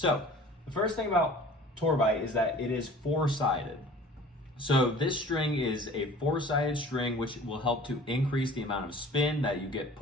the first thing about Tour Bite is that it is four-sided. So this string is a four-sided string, which will help to increase the amount of spin that you get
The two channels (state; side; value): normal; both; correlation 0.46